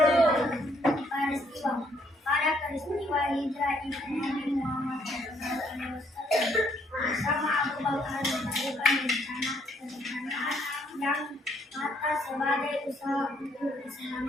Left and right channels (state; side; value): normal; both; correlation 0.68